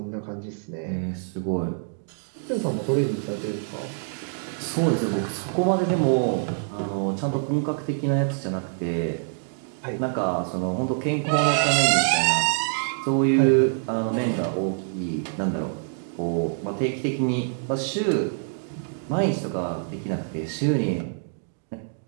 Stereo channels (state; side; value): silent; left; digital silence